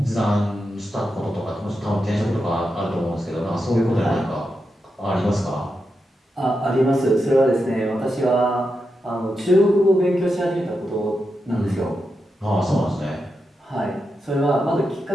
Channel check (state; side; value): normal; both; correlation 0.87